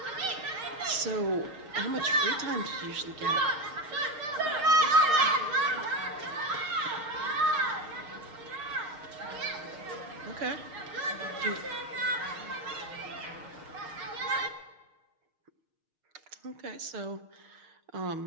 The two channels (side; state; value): left; late; 6.5 ms